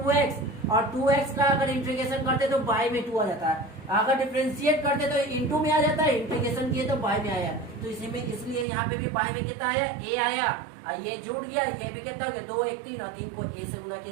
और 2x का अगर इंटीग्रेशन करते तो बाय में 2 आ जाता है, अगर डिफरेंशिएट करते तो इनटू में आ जाता है, इंटीग्रेशन किए तो बाय में आया, तो इसी में इसलिए यहाँ पे भी बाय में कितना आया, a आया, और ये जुड़ गया, ये भी कितना हो गया, 2 1 3 और 3 को a से गुणा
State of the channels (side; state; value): left; drops out; at 8.7 s